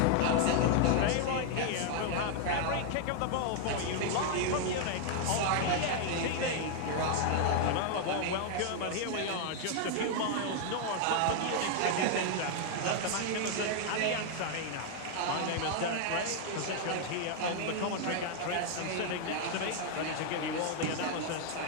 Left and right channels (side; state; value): both; different; correlation 0.00